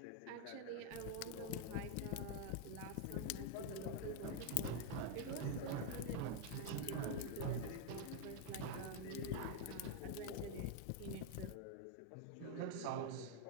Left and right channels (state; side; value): different; both; correlation 0.01